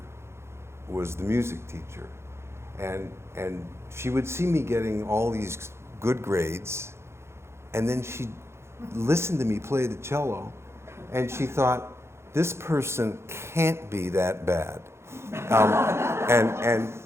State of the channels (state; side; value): late; left; 0.13 ms